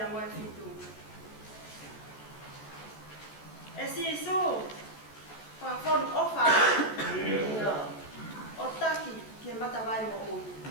moe fitu. E si isu. Whakon ofa o taki ke matawai mo ui.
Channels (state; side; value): late; right; 14 ms